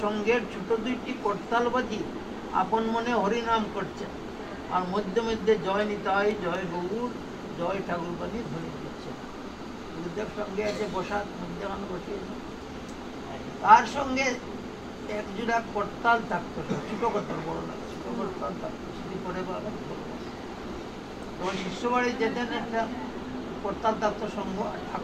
সঙ্গের ছোট 2টি করতাল বাজি আপন মনে হরিনাম করছেন, আর মধ্যে মধ্যে জয় নিতাই, জয় গৌর, জয় ঠাকুর বাজি ধ্বনি দিচ্ছেন। গুরুদেব সঙ্গে আছে বসার মধ্যখানে বসিয়েছে। তার সঙ্গে এক জোড়া করতাল থাকতো, ছোট করতাল, বড় না, ছোট করতাল থাকতো। সেটি পরে তখন শিষ্য বাড়ি যেতেন, একটা করতাল থাকতো সঙ্গ,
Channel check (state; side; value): identical; both; correlation 1.00